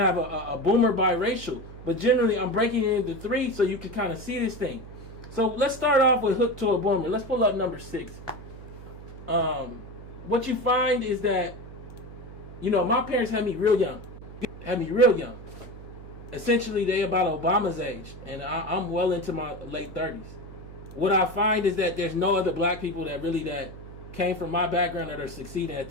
a boomer biracial. But generally, I'm breaking it into 3 so you can kind of see this thing. So let's start off with hooked to a boomer. Let's pull up number 6. what you find is that, my parents had me real young. Essentially, they about Obama's age, and I'm well into my late 30s. What I find is that there's no other black people that came from my background that are succeeding at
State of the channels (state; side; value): noise; right; hum, 15 dB below the sound